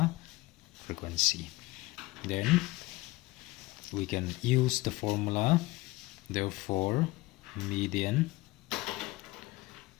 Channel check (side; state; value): right; quieter; 20.6 dB